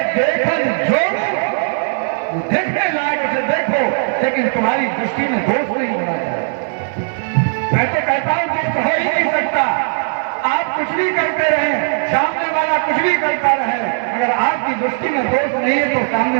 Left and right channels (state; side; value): silent; left; digital silence